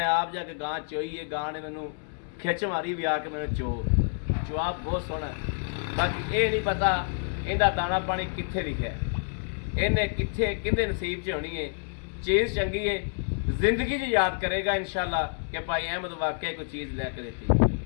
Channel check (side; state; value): right; silent; 59 dB below the other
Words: ਆਪ ਜਾ ਕੇ ਗਾਂ ਚੋਈ ਹੈ ਗਾਂ ਨੇ ਮੈਨੂੰ ਖਿੱਚ ਮਾਰੀ ਵੀ ਆ ਕੇ ਮੈਨੂੰ ਜਵਾਬ ਬਹੁਤ ਸੋਹਣਾ ਬਾਕੀ ਇਹ ਨਹੀਂ ਪਤਾ ਇਹਦਾ ਦਾਣਾ ਪਾਣੀ ਕਿੱਥੇ ਲਿਖਿਆ ਇਹਨੇ ਕਿੱਥੇ ਕਿਹਦੇ ਨਸੀਬ 'ਚ ਹੋਣੀ ਹੈ ਚੀਜ਼ ਚੰਗੀ ਹੈ ਜ਼ਿੰਦਗੀ 'ਚ ਯਾਦ ਕਰੇਗਾ ਇਨਸ਼ਾਅੱਲਾ ਕਿ ਭਾਈ ਅਹਿਮਦ ਵਾਕਿਆ ਕੋਈ ਚੀਜ਼ ਲੈ ਕੇ